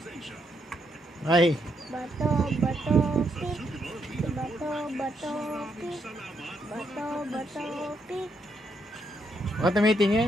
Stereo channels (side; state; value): both; normal; correlation 0.77